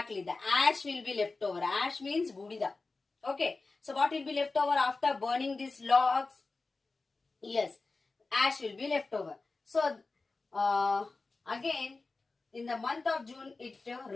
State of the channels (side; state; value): right; quieter; 3.7 dB